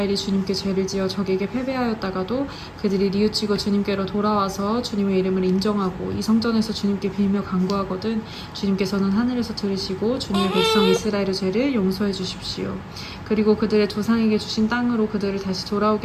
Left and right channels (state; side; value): identical; both; correlation 1.00